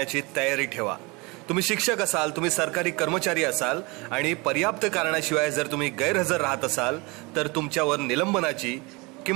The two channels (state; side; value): quieter; left; 26.4 dB